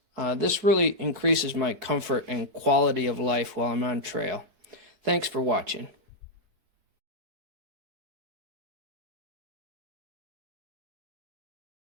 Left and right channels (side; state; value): left; late; 4.6 ms